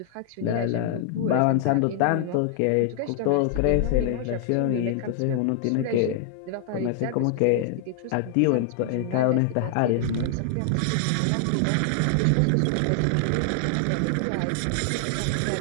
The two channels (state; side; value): different; both; correlation 0.00